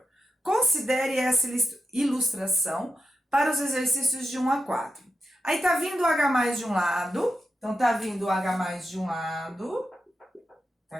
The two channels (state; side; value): normal; both; correlation 0.88